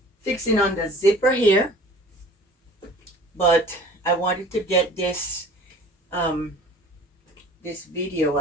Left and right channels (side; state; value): both; normal; correlation 0.46